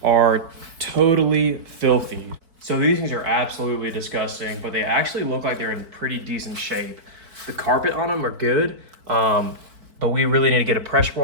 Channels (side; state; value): left; late; 4.5 ms